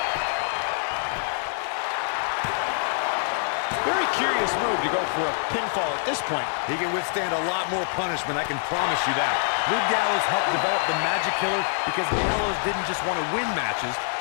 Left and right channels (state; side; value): silent; right; 61 dB below the other